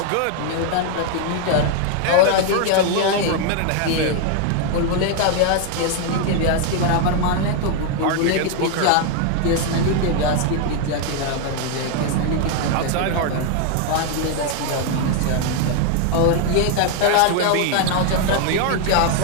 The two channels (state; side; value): different; both; correlation 0.00